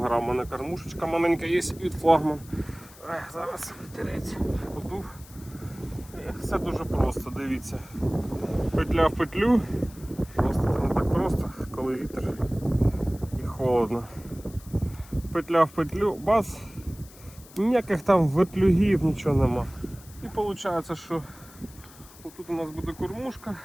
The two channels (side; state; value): left; noise; hiss, 22 dB below the sound